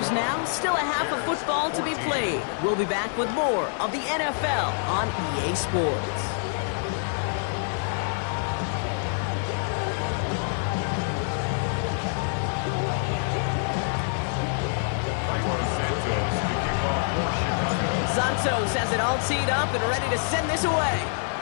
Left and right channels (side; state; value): right; silent; 61 dB below the other